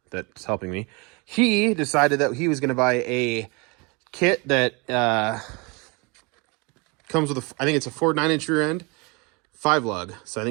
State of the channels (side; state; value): left; quieter; 28.9 dB